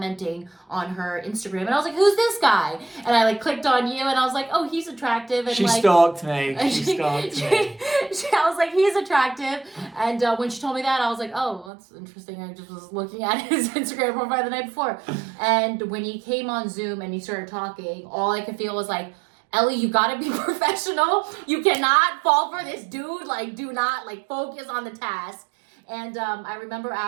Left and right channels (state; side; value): drops out; left; at 11.7 s